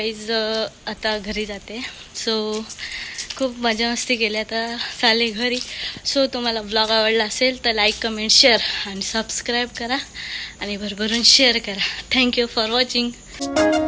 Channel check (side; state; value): both; identical; correlation 1.00